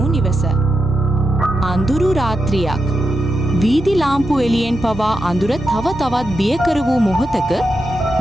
නිවස. අඳුරු රාත්‍රියක්. වීදි ලාම්පු එළියෙන් පවා අඳුර තව තවත් බියකර වූ මොහොතක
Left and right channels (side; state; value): both; normal; correlation 0.87